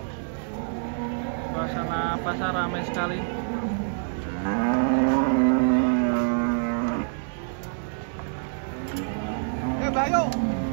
Suasana pasar ramai sekali. Bayo.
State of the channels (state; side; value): silent; left; digital silence